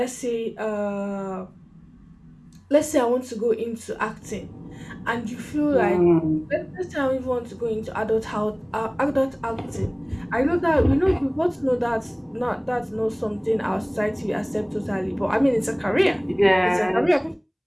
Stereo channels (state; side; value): identical; both; correlation 1.00